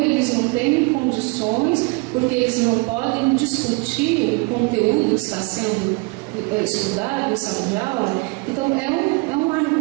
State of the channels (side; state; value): left; quieter; 28.6 dB